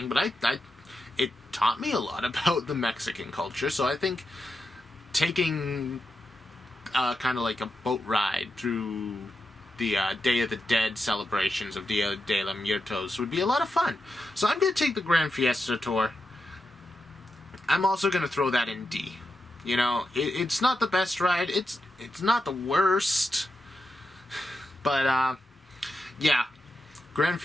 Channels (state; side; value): normal; both; correlation 0.87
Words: but it taught me a lot about the Mexican culture. So I think taking kind of like a boat ride through the Day of the Dead celebrations of Dia de los Muertos would be a lot of fun. So I'm going to take the Grand Fiesta Tour. I'm also going to throw that in D. You know, it's not the best ride. It's not the worst. But, yeah. Grand